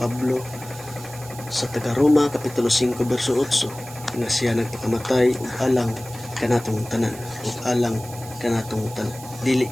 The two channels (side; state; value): right; noise; hiss, 16 dB below the sound